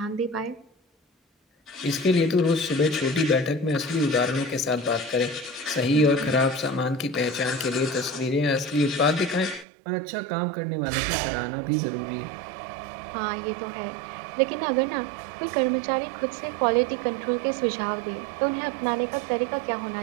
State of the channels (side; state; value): left; drops out; at 9.7 s